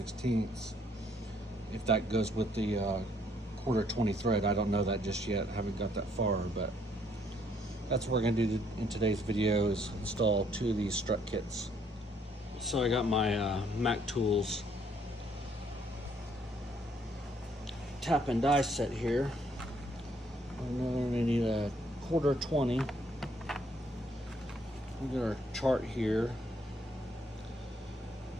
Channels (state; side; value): normal; both; correlation 0.67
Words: if that goes with the 1/4 thread. I don't know that just yet. I haven't got that far, but that's what we're gonna do in today's video, is install 2 of these strut kits. So I got my Mac Tools tap and die set here. I'm gonna need a 1/4. We got our chart here,